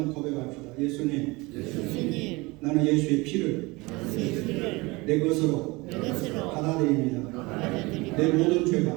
고백합시다. 예수님, 나는 예수의 피를 내 것으로 받아들입니다. 내 모든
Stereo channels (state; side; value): quieter; left; 23.9 dB